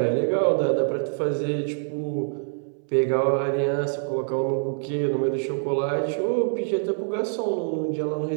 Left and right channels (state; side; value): silent; left; 62 dB below the other